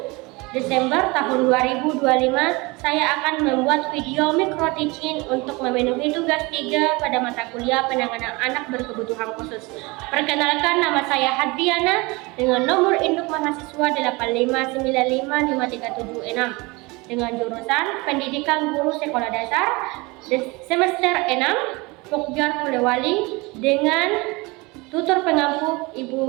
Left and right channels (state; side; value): quieter; left; 24.9 dB